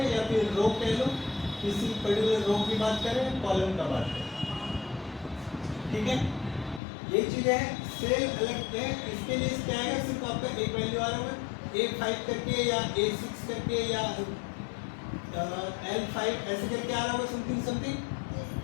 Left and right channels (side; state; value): right; drops out; at 6.8 s